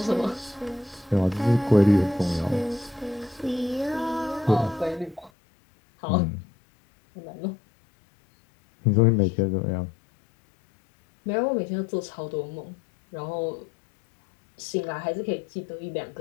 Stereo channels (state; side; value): drops out; right; at 5.3 s